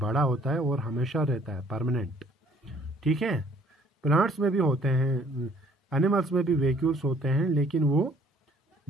होता है और हमेशा रहता है, परमानेंट। ठीक है, प्लांट्स में भी होते हैं, एनिमल्स में भी वैक्यूल्स होते हैं, लेकिन वो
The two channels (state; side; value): normal; both; correlation 0.59